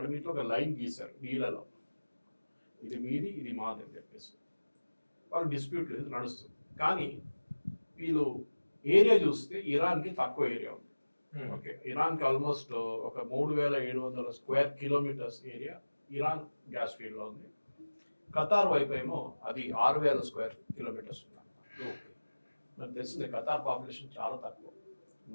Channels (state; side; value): inverted; both; correlation -1.00